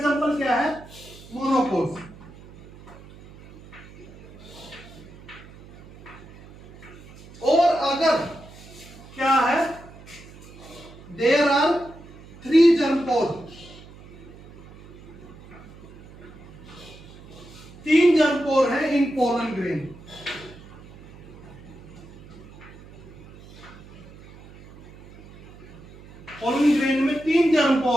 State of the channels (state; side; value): noise; right; hum, 20 dB below the sound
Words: क्या है? मोनोकोट। और अगर क्या है, there are 3 germ pore, 3 germ pore है इन पोलन ग्रेन, पोलन ग्रेन में 3 जर्म